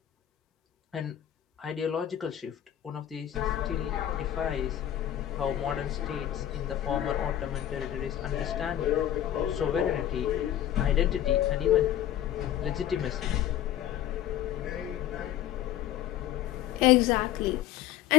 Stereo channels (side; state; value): right; quieter; 12.0 dB